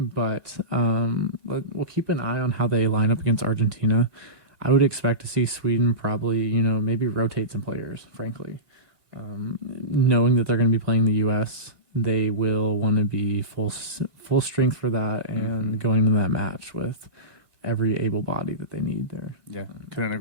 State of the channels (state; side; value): late; left; 1.5 ms